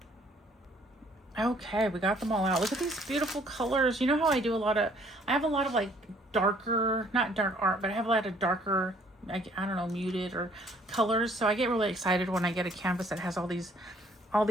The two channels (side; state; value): both; normal; correlation 0.61